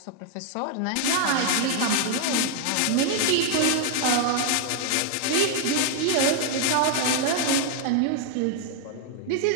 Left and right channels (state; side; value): different; both; correlation 0.00